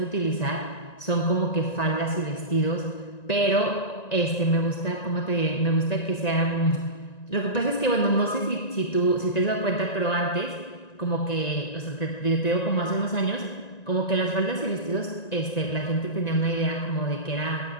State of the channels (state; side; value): late; right; 1.9 ms